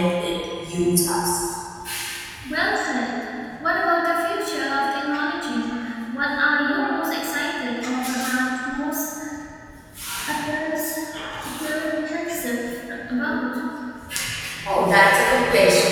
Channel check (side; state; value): both; identical; correlation 1.00